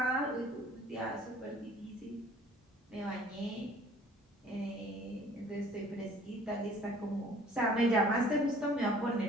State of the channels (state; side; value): normal; both; correlation 0.53